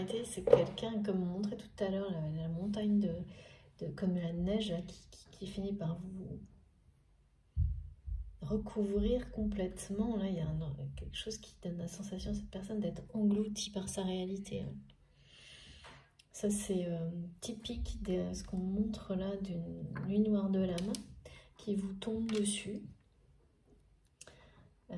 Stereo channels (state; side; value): identical; both; correlation 1.00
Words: C'est quelqu'un, comme on montrait tout à l'heure, la montagne comme la neige là, qui finit par vous recouvrir complètement. Là, il y a quelque chose qui donne la sensation à cette personne d'être engloutie par sa réalité. Hein. Ça, c'est typique de ce qu'on montre là d'une nuit noire de l'âme qui vous tombe dessus.